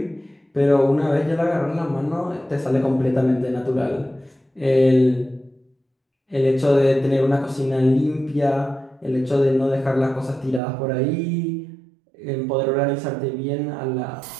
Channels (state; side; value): drops out; left; at 10.6 s